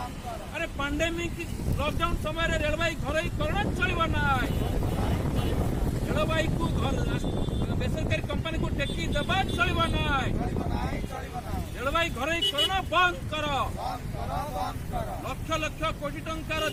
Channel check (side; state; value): both; identical; correlation 1.00